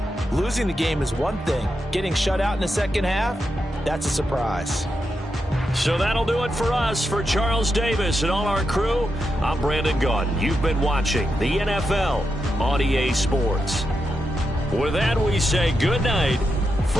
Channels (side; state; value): both; normal; correlation 0.86